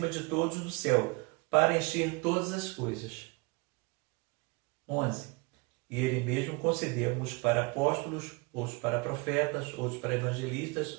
de todos do céu, para encher todas as coisas. 11. E ele mesmo concedeu uns para apóstolos, outros para profetas, outros para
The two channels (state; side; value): quieter; left; 28.1 dB